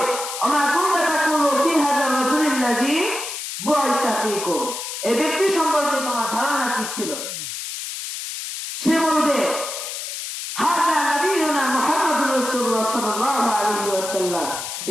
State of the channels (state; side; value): noise; left; hiss, 6 dB below the sound